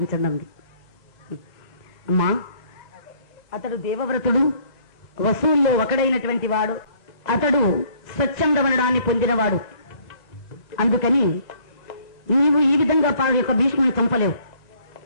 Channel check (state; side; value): late; right; 2.0 ms